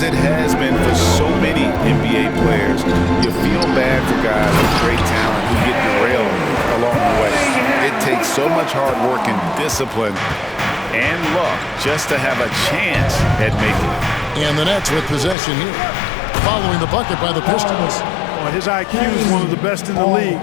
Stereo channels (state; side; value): drops out; right; at 15.4 s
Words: it has been for so many NBA players, you feel bad for guys with great talent who get derailed along the way. It takes so much hard work and discipline and luck just to have a chance at making it. And the Nets with possession here. Following the bucket by the Pistons. Well, his IQ is one of the best in the league.